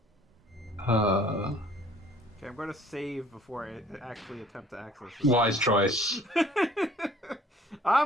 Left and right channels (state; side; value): normal; both; correlation 0.56